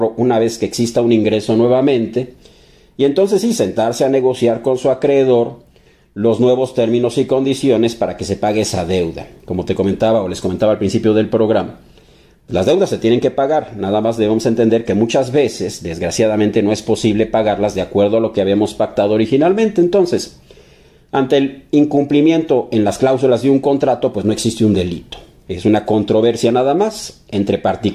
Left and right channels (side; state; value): both; identical; correlation 1.00